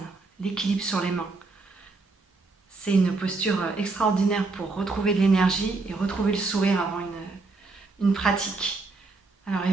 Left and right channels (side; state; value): left; quieter; 3.7 dB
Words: l'équilibre sur les mains. C'est une posture extraordinaire pour retrouver de l'énergie et retrouver le sourire avant une pratique. Alors